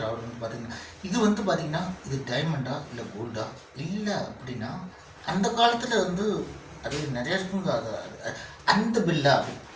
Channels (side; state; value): both; identical; correlation 1.00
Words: அவர் வந்து பார்த்தீங்கன்னா. இது வந்து பார்த்தீங்கன்னா இது டைமண்டா இல்லை கோல்டா இல்லை அப்படின்னா அந்த காலத்தில் வந்து அது நிறைய இருக்குங்க. அந்த பில்லா